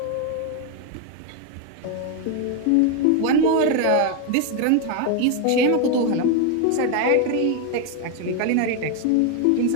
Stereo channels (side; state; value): both; different; correlation 0.01